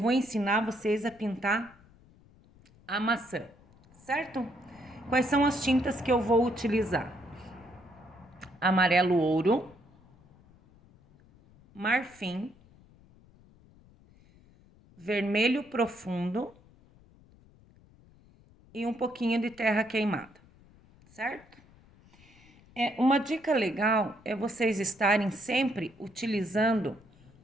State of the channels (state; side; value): noise; left; rumble, 27 dB below the sound